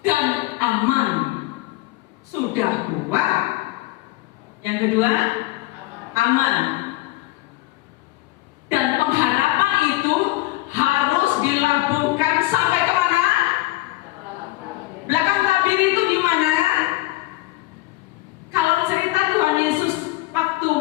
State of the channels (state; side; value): quieter; right; 18.7 dB